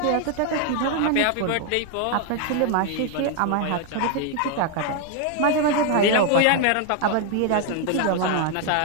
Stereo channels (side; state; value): both; different; correlation 0.01